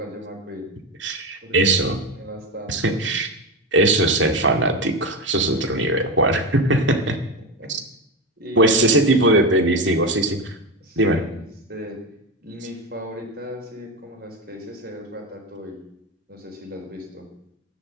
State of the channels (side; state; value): both; normal; correlation 0.17